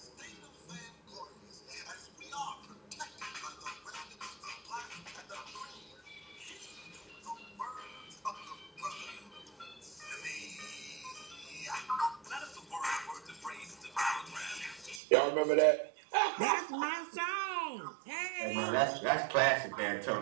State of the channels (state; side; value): drops out; left; at 15.0 s